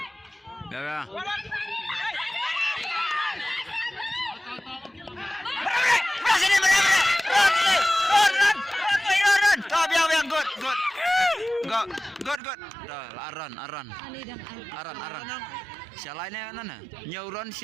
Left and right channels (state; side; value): drops out; left; at 12.4 s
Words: Ya. Sini benar. Run. Tahu biang good. Dah aran. Aran. Sia lainnya mana? Nyuron